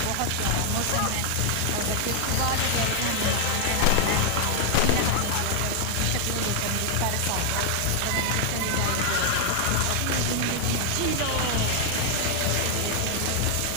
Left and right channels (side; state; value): both; different; correlation 0.00